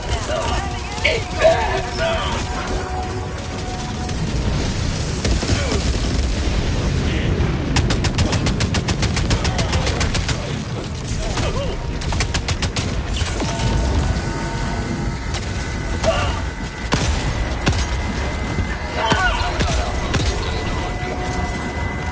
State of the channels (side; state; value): both; identical; correlation 1.00